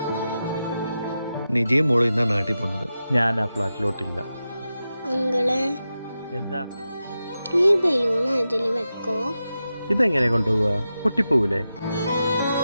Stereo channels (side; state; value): both; inverted; correlation -0.91